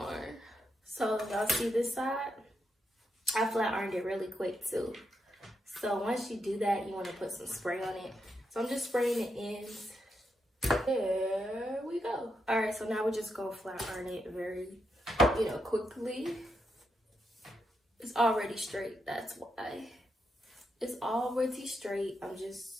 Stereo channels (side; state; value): both; normal; correlation 0.83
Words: So y'all see this side? I flat ironed it really quick too. So once you do that, you wanna put some spray on it. So I'm just spraying the ends. There we go. All right, so now we're just gonna flat iron it very, quickly. It's already straight, that's why. It's already straight. I'm